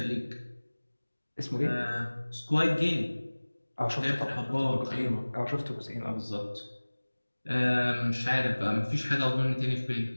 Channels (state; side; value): inverted; both; correlation -1.00